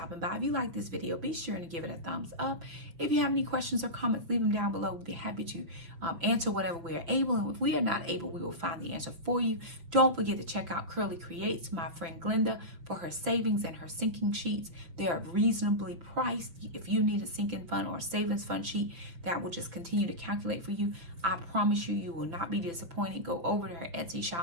by. If you like this video, be sure to give it a thumbs up. If you have any questions or comments, leave them down below. We'll be happy to answer whatever we are able. And if we are not able, we will find the answer for you. Don't forget to check out Curly Creates, my friend Glenda, for her savings and her sinking sheets. They are reasonably priced. If you need a sinking fund or a savings fund sheet that will just continue to calculate for you, I promise you, you will not be disappointed. Go over to her Etsy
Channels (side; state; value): left; late; 5.9 ms